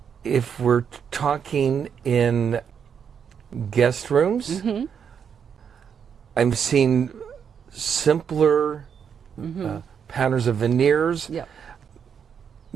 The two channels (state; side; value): quieter; left; 7.3 dB